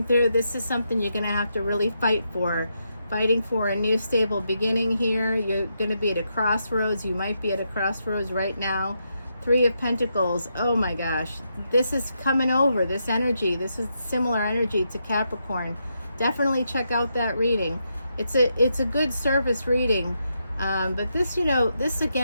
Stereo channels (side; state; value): both; inverted; correlation -0.82